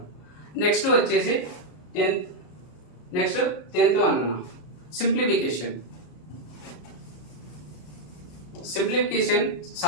నెక్స్ట్ వచ్చేసి 10th వన్ అన్న, సింప్లిఫికేషన్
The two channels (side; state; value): right; late; 33 ms